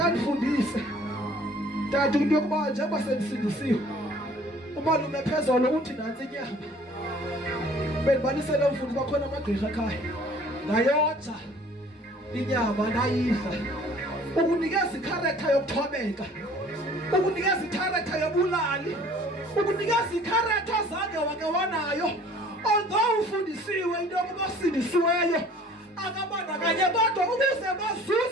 kufundise tata into yokuba njengoba sendisindisiwe umalume phezolo uthi nansi inyama bendibalisele umfundi bakhona amagqirha ekhaya ngayotha inyama ndayidla ukunikeza ikharektha yokuthobeka ukunikeza ikharektha yobulali ukunikeza ikharektha zange wake wanayo although ufundisiwe into yokuba sindisiweyo akabandakanye kodwa ukuze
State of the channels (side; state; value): both; normal; correlation 0.52